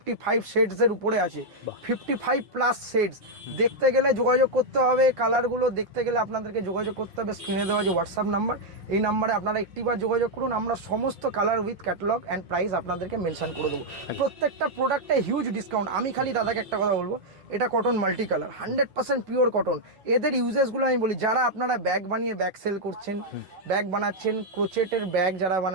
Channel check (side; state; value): left; late; 5.7 ms